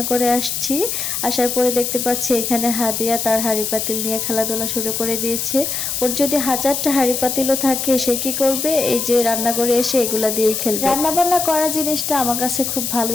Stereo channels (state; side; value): noise; left; hiss, 2 dB below the sound